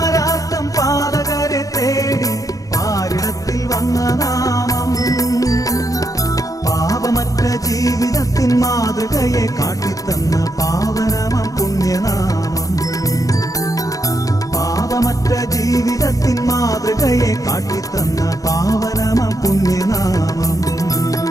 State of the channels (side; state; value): right; late; 0.16 ms